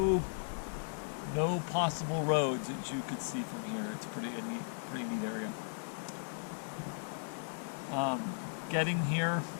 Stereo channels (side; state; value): right; silent; 53 dB below the other